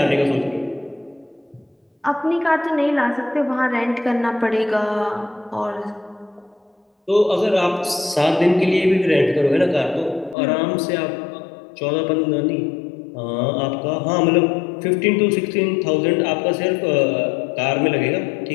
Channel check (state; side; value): drops out; right; at 10.4 s